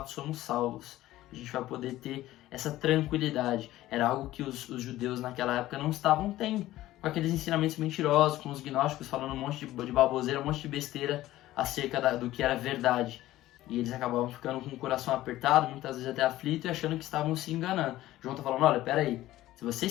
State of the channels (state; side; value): quieter; right; 15.4 dB